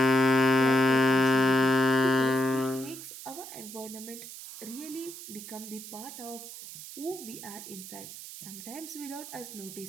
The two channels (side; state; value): right; noise; hiss, 13 dB below the sound